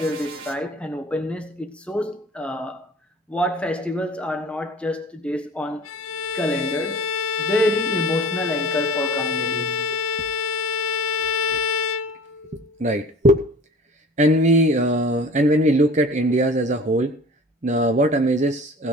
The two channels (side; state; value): both; normal; correlation 0.43